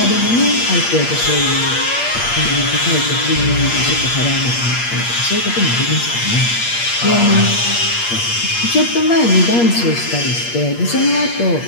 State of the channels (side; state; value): right; late; 8.5 ms